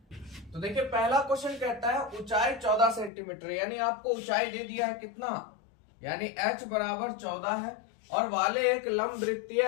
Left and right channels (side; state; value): right; drops out; at 3.1 s